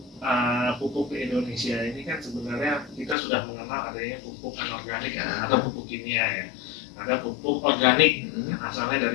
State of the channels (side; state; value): right; drops out; at 3.2 s